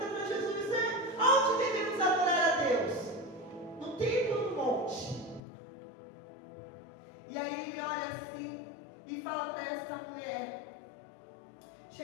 para Jesus: onde devemos adorar a Deus? No templo ou no monte? E aí ele olha assim e fala para essa mulher:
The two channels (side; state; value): right; drops out; at 5.4 s